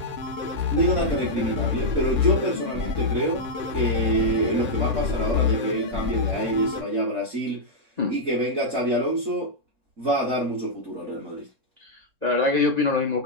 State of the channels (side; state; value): left; late; 3.6 ms